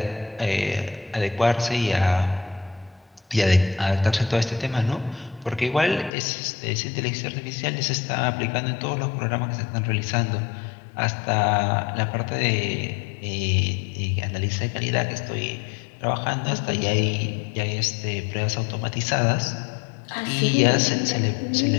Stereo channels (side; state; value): right; drops out; at 6.1 s